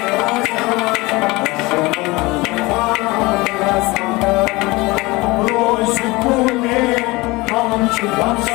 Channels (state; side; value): quieter; right; 22.6 dB